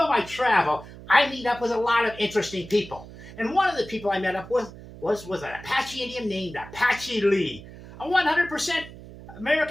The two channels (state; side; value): noise; right; hum, 16 dB below the sound